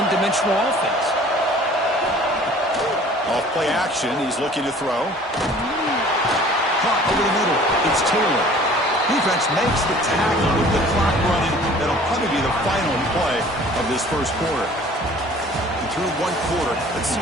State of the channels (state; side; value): normal; both; correlation 0.49